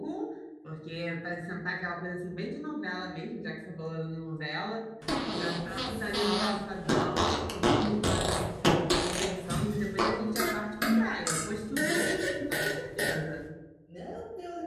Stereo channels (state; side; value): identical; both; correlation 1.00